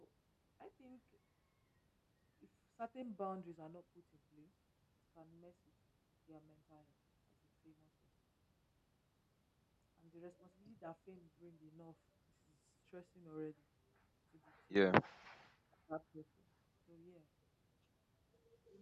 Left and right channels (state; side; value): identical; both; correlation 1.00